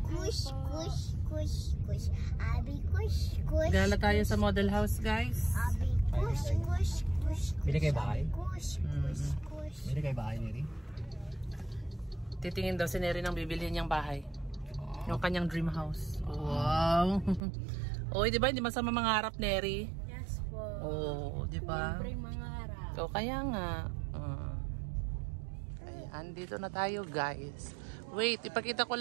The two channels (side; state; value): left; drops out; at 17.4 s